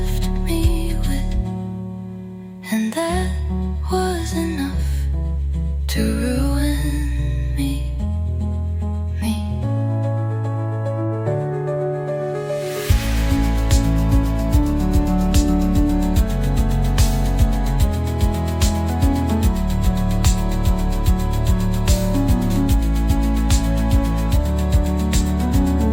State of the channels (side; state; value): both; identical; correlation 1.00